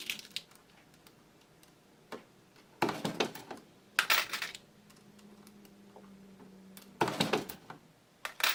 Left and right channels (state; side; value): identical; both; correlation 1.00